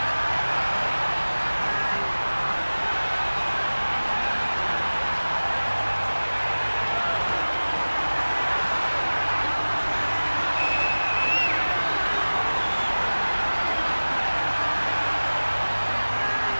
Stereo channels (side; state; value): both; inverted; correlation -1.00